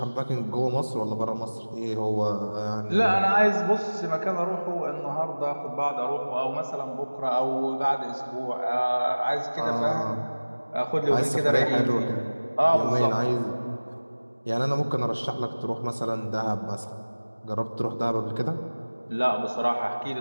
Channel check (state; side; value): inverted; both; correlation -1.00